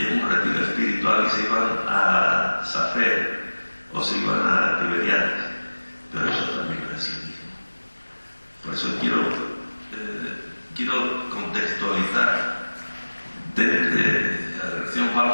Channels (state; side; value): inverted; both; correlation -1.00